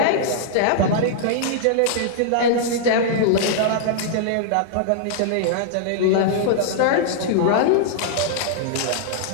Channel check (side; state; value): both; different; correlation -0.02